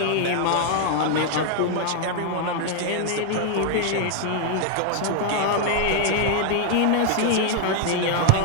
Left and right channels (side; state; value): both; different; correlation 0.00